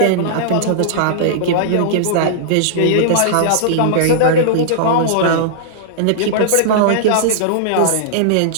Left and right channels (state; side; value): different; both; correlation -0.02